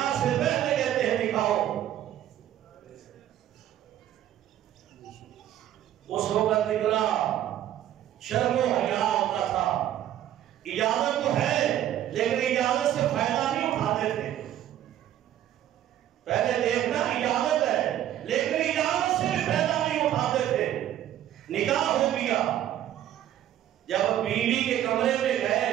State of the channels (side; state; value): left; quieter; 11.9 dB